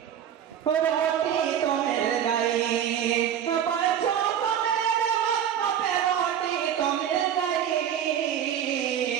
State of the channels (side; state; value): left; quieter; 9.5 dB